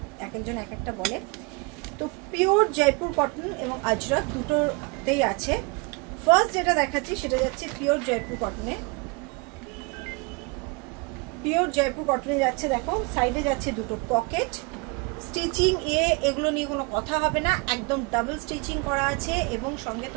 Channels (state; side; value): quieter; left; 29.8 dB